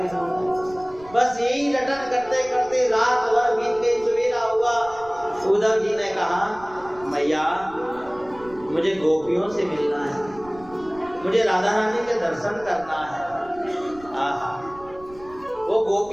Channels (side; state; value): right; noise; rumble, 22 dB below the sound